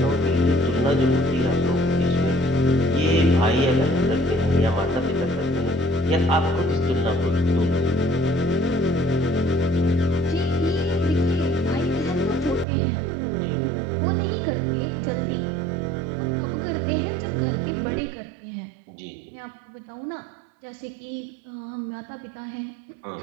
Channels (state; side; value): drops out; left; at 12.7 s